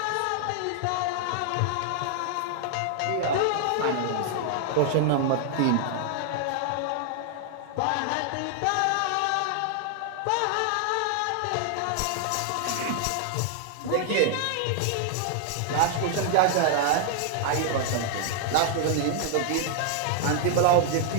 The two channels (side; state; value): both; different; correlation 0.00